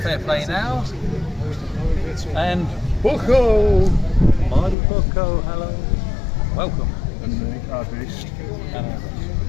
Fair Play Now. And Bucko! Mardy Bucko, hello. Welcome. And me, our beast.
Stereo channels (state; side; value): drops out; right; at 4.8 s